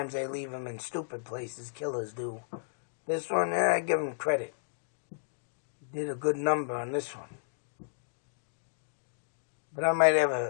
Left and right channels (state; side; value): silent; right; digital silence